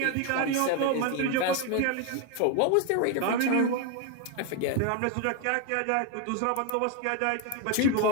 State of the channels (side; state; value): both; different; correlation 0.01